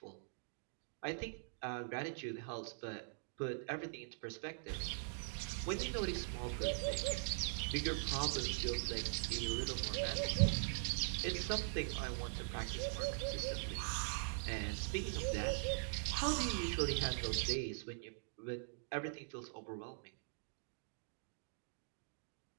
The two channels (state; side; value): silent; left; digital silence